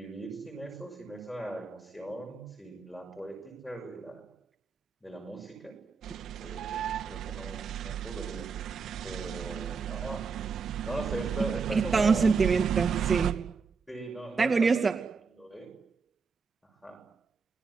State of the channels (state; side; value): quieter; left; 5.1 dB